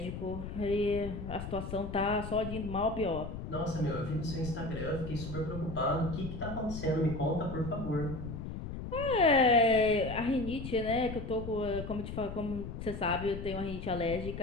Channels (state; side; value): noise; left; rumble, 7 dB below the sound